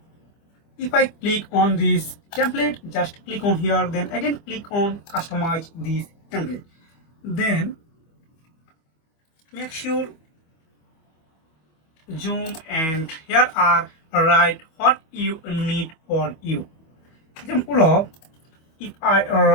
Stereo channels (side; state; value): right; late; 25 ms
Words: If I click on this template, just click on here, then again click on customize this template. Then make sure zoom, and here are write what you need for you. Example of, if I